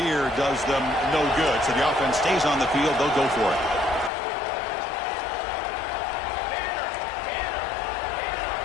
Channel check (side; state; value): right; drops out; at 4.1 s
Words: does them no good. So the offense stays on the field. They'll go for it.